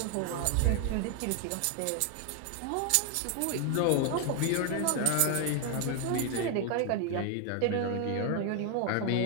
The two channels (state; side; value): different; both; correlation 0.00